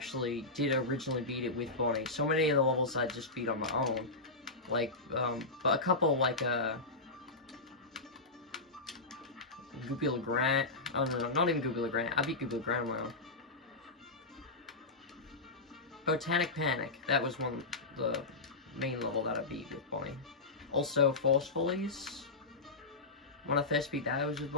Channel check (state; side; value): quieter; right; 3.4 dB